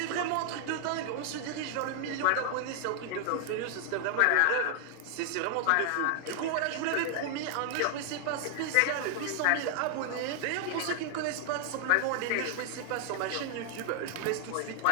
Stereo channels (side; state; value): both; different; correlation 0.00